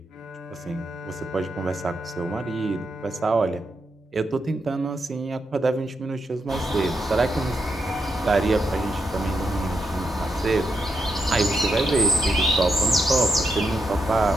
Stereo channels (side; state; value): both; normal; correlation 0.82